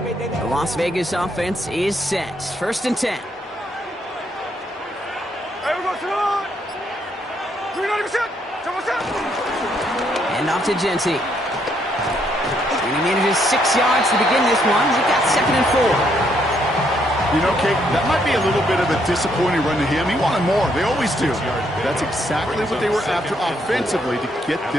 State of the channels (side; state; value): both; normal; correlation 0.73